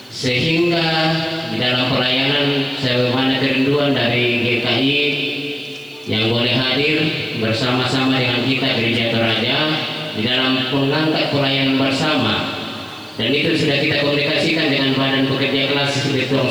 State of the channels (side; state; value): right; noise; hiss, 28 dB below the sound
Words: sehingga di dalam pelayanan sebagaimana kerinduan dari GKI yang boleh hadir bersama-sama dengan kita Gereja Toraja di dalam mengangkat pelayanan bersama, dan itu sudah kita komunikasikan dengan Badan Pekerja Kelas di